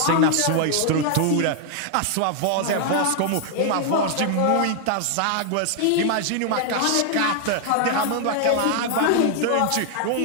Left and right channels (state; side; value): different; both; correlation 0.00